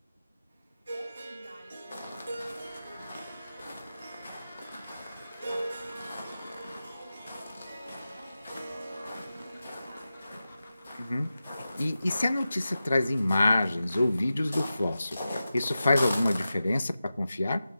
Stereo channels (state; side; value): inverted; both; correlation -0.93